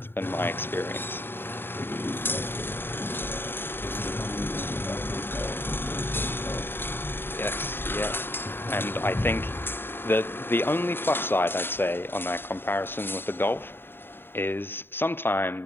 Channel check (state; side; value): late; right; 0.10 ms